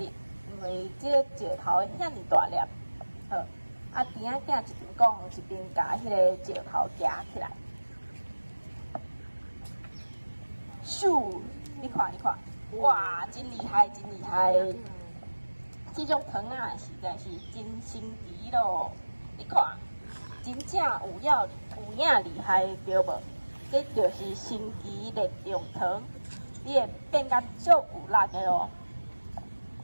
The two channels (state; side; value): inverted; both; correlation -1.00